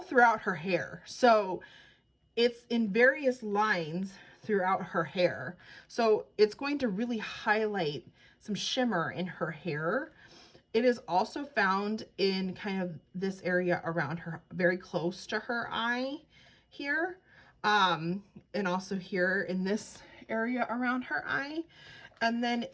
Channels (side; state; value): both; identical; correlation 1.00